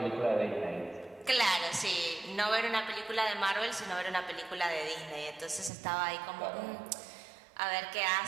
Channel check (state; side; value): drops out; left; at 5.7 s